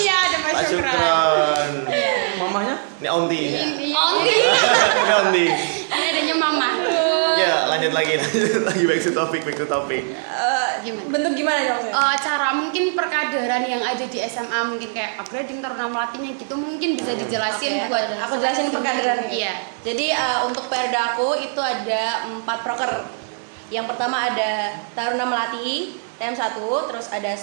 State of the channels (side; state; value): left; silent; 65 dB below the other